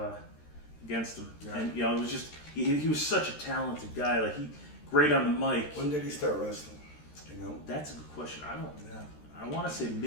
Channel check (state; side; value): late; right; 13 ms